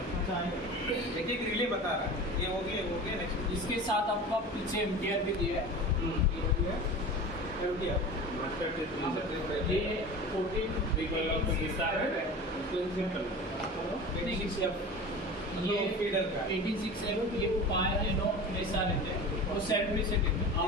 अच्छा है। देखिए कि रिले बता रहा है ये हो गया नेक्स्ट इसके साथ आपका पीछे एम्पियर भी दिया है। ये हो गया। ये 14 बिगल ऑफ द विस्तार है उसको सिंपल ये फीडर का 86 ये 5 ऐसा रहते हैं वो सेल्फ रीसेट है,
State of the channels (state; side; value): normal; both; correlation 0.34